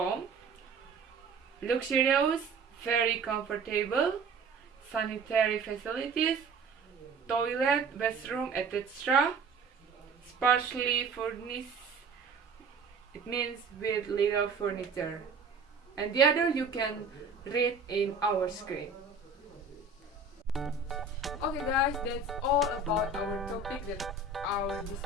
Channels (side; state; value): left; quieter; 4.1 dB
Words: Luxurious, very comfortable. Sanitary facilities, toilet, restroom, etc. Sparsely furnished, it means with little furniture. and the other you can read in our screen. Okay guys, that's all about our topic that I will